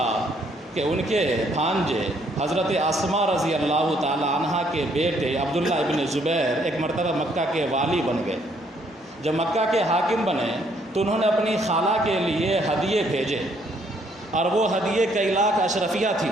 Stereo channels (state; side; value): normal; both; correlation 0.68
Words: کہ ان کے بھانجے حضرت اسماء رضی اللہ تعالی عنہ کے بیٹے عبداللہ ابن زبیر ایک مرتبہ مکہ کے والی بن گئے۔ جب مکہ کے حاکم بنے تو انہوں نے اپنی خالہ کے لیے ہدیے بھیجے اور وہ ہدیے کئی لاکھ اشرفیہ تھی،